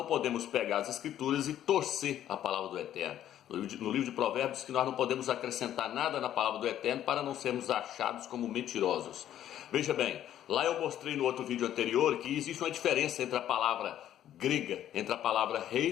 podemos pegar as escrituras e torcer a palavra do Eterno. No livro de Provérbios diz que nós não podemos acrescentar nada na palavra do Eterno para não sermos achados como mentirosos. Veja bem, lá eu mostrei no outro vídeo anterior que existe uma diferença entre a palavra grega, entre a palavra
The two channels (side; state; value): right; quieter; 11.4 dB